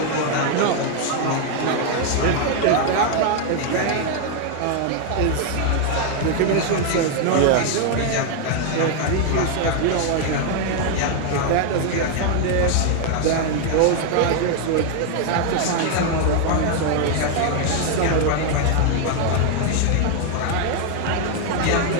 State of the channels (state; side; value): different; both; correlation 0.00